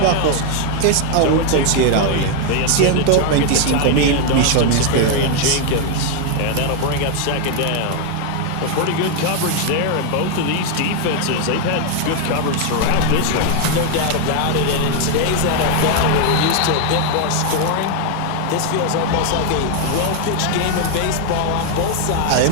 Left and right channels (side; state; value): both; different; correlation 0.01